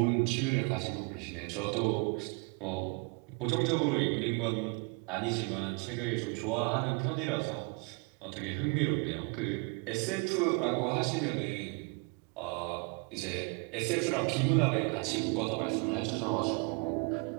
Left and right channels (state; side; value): quieter; left; 31.2 dB